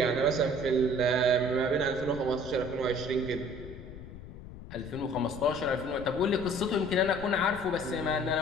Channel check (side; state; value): left; noise; rumble, 14 dB below the sound